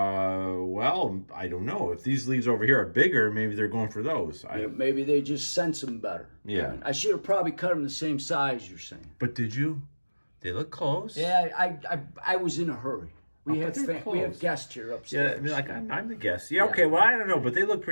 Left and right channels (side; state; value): both; inverted; correlation -1.00